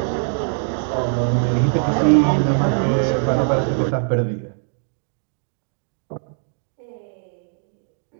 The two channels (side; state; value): left; silent; 64 dB below the other